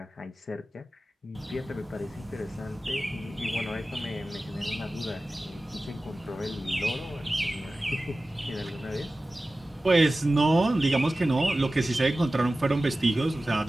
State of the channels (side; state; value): both; normal; correlation 0.96